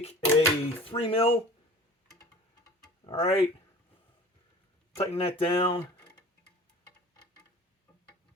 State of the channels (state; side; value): normal; both; correlation 0.42